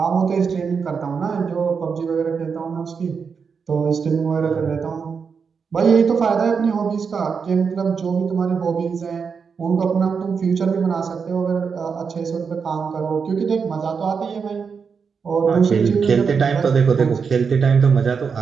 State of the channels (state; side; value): quieter; left; 5.9 dB